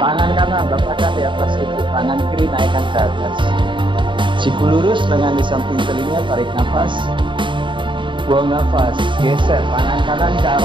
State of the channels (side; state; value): left; late; 0.23 ms